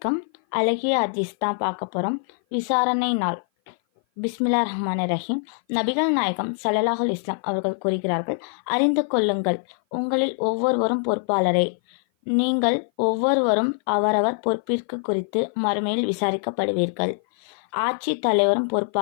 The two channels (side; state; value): right; silent; 57 dB below the other